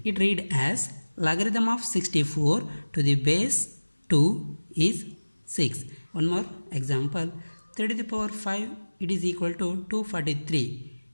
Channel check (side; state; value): both; inverted; correlation -1.00